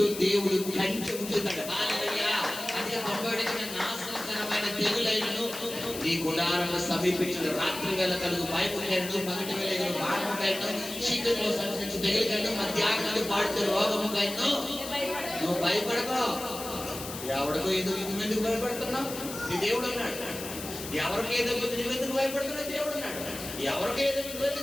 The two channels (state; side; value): noise; left; hiss, 9 dB below the sound